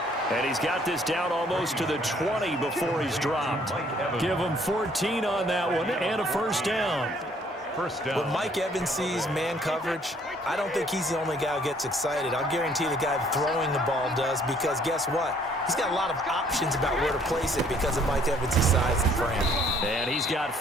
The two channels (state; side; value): normal; both; correlation 0.62